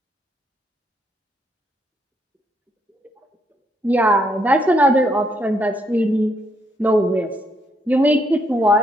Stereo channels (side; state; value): both; normal; correlation 0.73